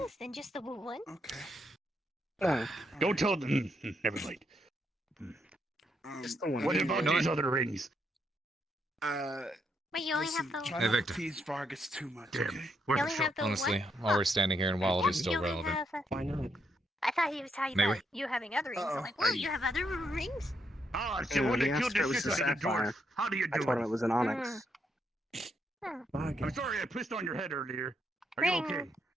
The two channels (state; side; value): normal; both; correlation 0.78